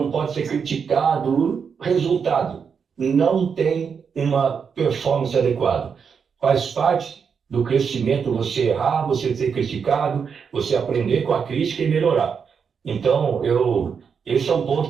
pode ser criticado. Resultado, não tem uma performance adequada. Faz parte do crescimento você errar, você ser criticado, você aprender com a crítica e melhorar. Então, esse é um ponto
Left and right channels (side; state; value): left; quieter; 6.4 dB